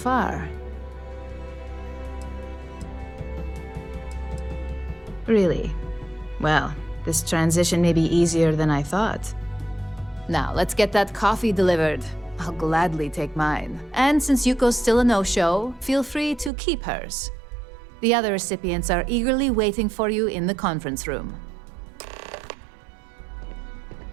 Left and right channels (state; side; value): drops out; left; at 16.5 s